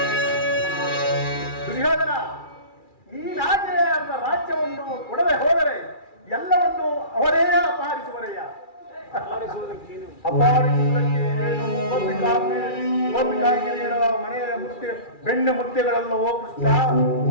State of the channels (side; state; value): right; late; 2.3 ms